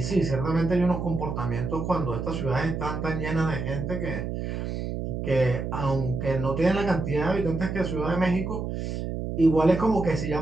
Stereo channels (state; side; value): noise; right; hum, 4 dB below the sound